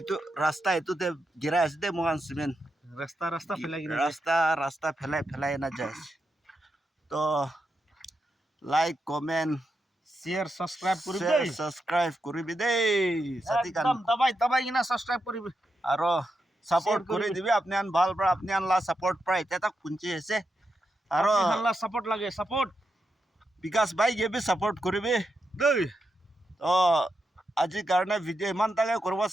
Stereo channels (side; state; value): both; normal; correlation 0.86